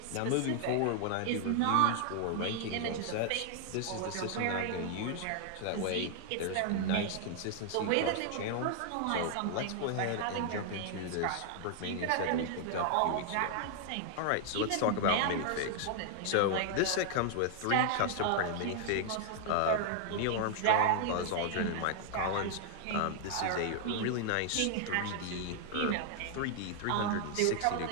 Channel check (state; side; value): different; both; correlation 0.00